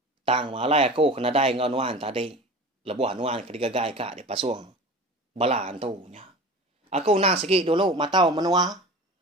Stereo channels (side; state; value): both; normal; correlation 0.35